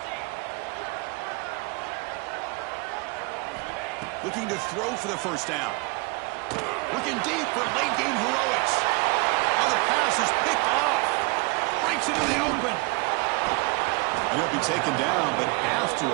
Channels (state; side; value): quieter; left; 27.5 dB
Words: Looking to throw for the first down. Looking deep for late game heroics. Oh, the pass is picked off. Breaks into the open. And he'll be taken down, but after